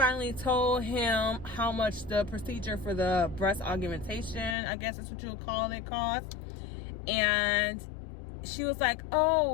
told him how much the procedure for the breast augmentation, I guess that's what you would call it, cost. And she was like,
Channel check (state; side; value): drops out; right; at 4.5 s